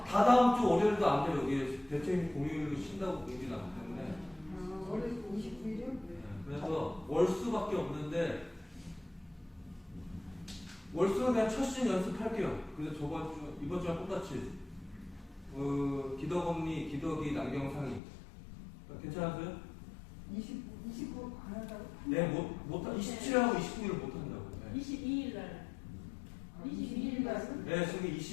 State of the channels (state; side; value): drops out; right; at 18.0 s